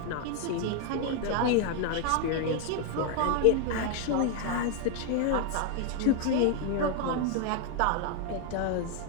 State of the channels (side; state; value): both; different; correlation 0.00